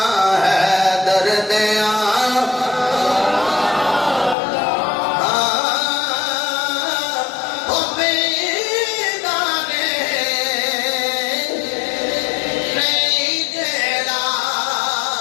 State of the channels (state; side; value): drops out; right; at 4.4 s